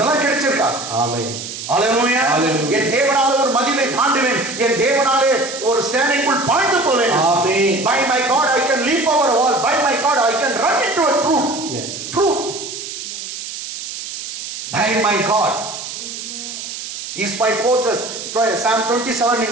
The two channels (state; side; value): noise; right; hiss, 8 dB below the sound